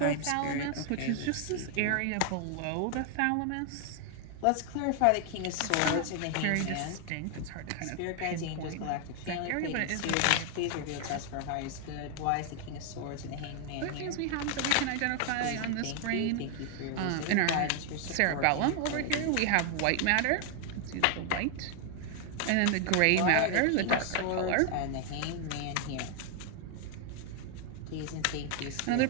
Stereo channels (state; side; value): different; both; correlation 0.00